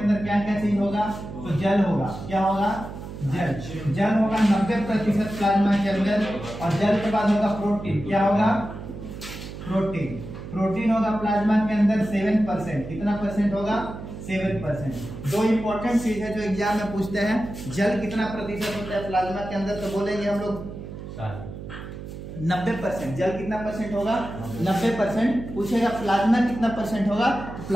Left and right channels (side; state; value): right; noise; hum, 11 dB below the sound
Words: क्या क्या चीज होगा, तो जल होगा। क्या होगा, जल। जल होगा 90% प्लाज्मा के अंदर, और जल के बाद होगा प्रोटीन। क्या होगा, प्रोटीन। प्रोटीन होगा प्लाज्मा के अंदर 7%। कितना परसेंट होगा, 7%। दो इंपॉर्टेंट चीज है जो एग्जाम में पूछते हैं, जल कितना प्रतिशत होता है प्लाज्मा के अंदर, तो बोलेंगे हम लोग 90%। जल कितना परसेंट होगा, 90%। पूछेगा प्लाज्मा कितना परसेंट होगा, तो